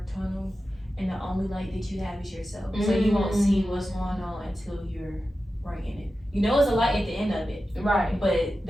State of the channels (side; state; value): both; normal; correlation 0.93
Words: tunnel and the only light that you have is yourself. So you won't see what's going on until you're right in it. You know it's a light at the end of it. Right. But